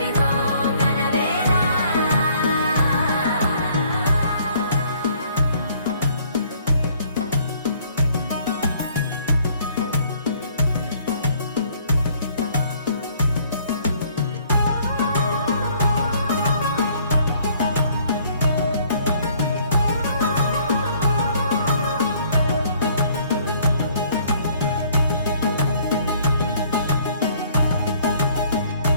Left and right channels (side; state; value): both; inverted; correlation -0.60